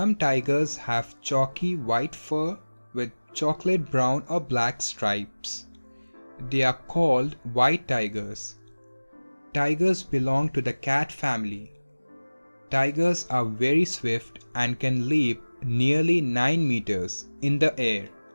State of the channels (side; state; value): both; inverted; correlation -1.00